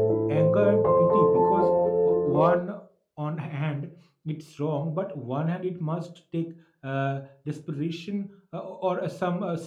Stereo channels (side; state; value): both; identical; correlation 1.00